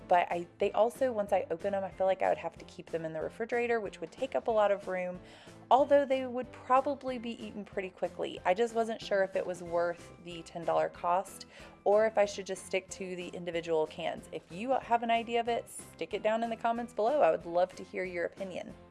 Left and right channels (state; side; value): identical; both; correlation 1.00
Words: but they also, once I open them, I feel like I would have to keep them in the refrigerator, which would take up a lot of room, although they would probably be eaten pretty quickly. I just wasn't sure if it was worth the $10 cost or if I should just stick to the individual cans. If you have an idea of it, stick it down in the comments below. I would love to hear your opinion.